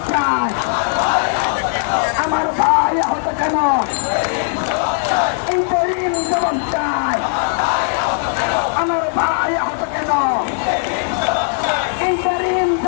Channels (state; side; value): silent; right; 55 dB below the other